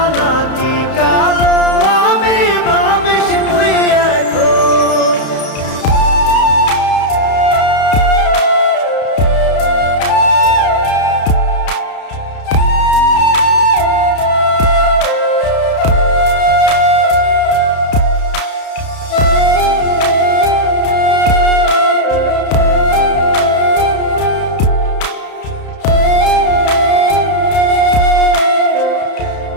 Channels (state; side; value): late; right; 31 ms